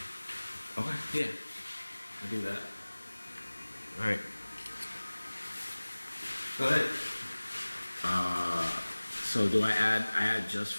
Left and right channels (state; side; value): inverted; both; correlation -1.00